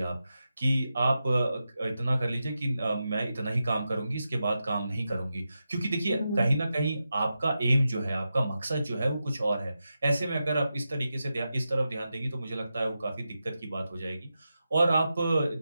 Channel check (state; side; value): inverted; both; correlation -0.90